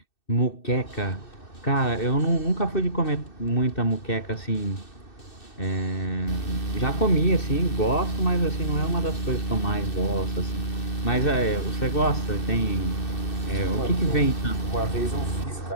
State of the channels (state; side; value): late; right; 2.6 ms